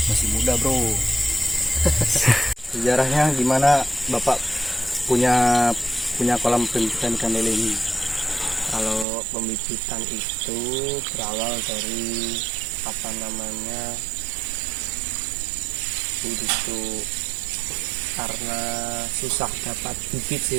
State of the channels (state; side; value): drops out; left; at 9.1 s